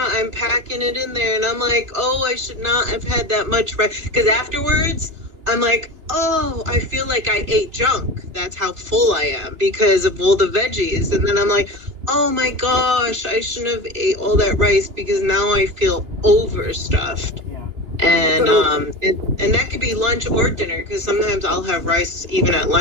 I'm packing it in there, and I'm like, oh, I should not have had that much rice, because afterwards, I'm like, oh, I feel like I ate junk. That's how full I am because of all the veggies, and then I'm like, oh my gosh, I shouldn't have ate all that rice because now I feel overstuffed. And that could be lunch or dinner because sometimes I'll have rice even at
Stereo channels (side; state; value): left; late; 2.9 ms